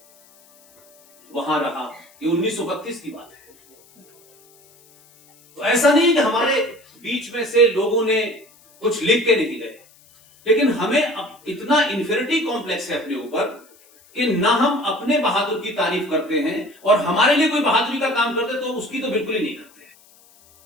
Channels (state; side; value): noise; left; hiss, 28 dB below the sound